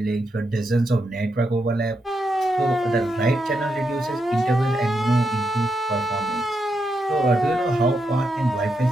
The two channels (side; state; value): both; normal; correlation 0.83